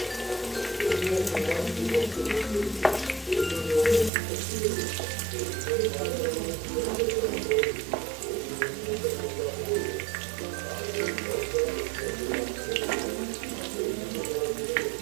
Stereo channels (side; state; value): left; drops out; at 4.1 s